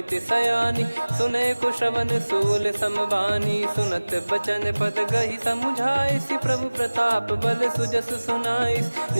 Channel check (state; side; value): inverted; both; correlation -1.00